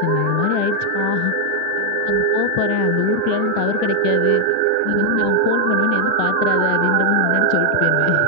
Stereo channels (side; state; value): both; different; correlation 0.01